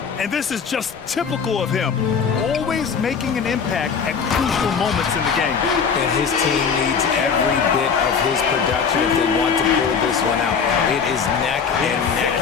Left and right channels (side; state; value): right; quieter; 6.2 dB